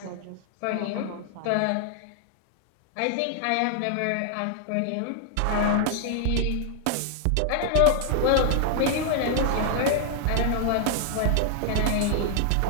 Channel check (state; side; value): different; both; correlation 0.00